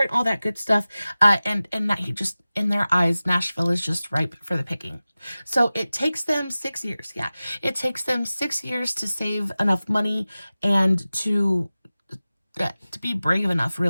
and all that good stuff. And that he just, in their eyes, Nashville is just ripe for the picking. So it takes them 6 years. Yeah, it takes them 6 years to save enough money and to be brave enough,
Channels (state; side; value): inverted; both; correlation -0.96